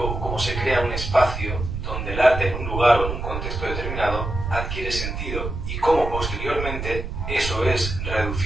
cómo se crea un espacio donde el arte en un lugar o en un contexto determinado adquiere sentido y cómo posteriormente eso es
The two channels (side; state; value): right; noise; rumble, 5 dB below the sound